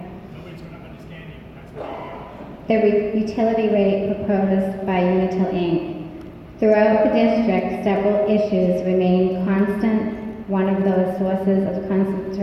The utility rate proposed by Unitil Inc. Throughout the district, several issues remain constant. One of those sources of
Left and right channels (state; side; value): identical; both; correlation 1.00